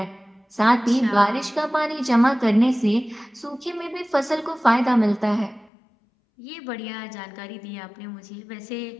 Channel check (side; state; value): right; drops out; at 5.7 s